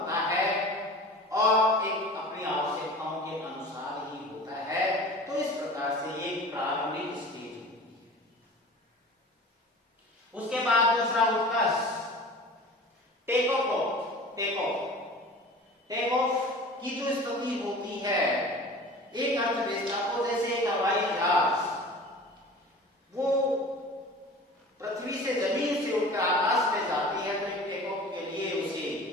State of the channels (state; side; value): normal; both; correlation 0.39